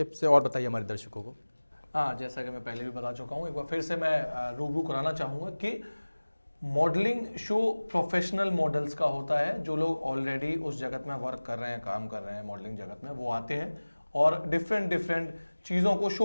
से और बताइए हमारे दर्शकों को। हाँ, जैसा कि मैं पहले भी बता चुका हूँ, एक बार फिर से मैं रूबरू कराना चाहूँगा कि मॉडलिंग शो प्रोफेशनल मॉडल्स का होता है। जो लोग ऑलरेडी उस जगत में वर्क कर रहे हैं, काम कर रहे हैं मॉडलिंग जगत में, वो आते हैं और डिफरेंट चीज़ों को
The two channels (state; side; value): inverted; both; correlation -1.00